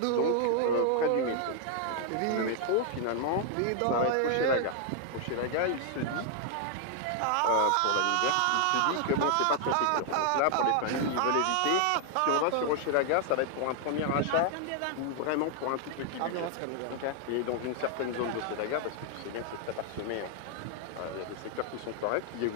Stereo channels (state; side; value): different; both; correlation 0.00